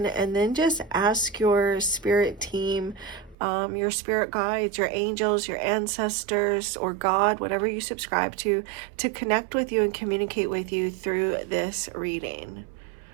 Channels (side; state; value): left; drops out; at 3.4 s